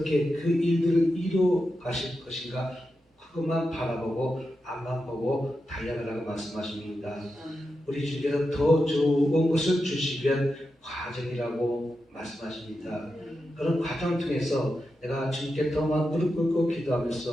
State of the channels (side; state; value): both; normal; correlation 0.89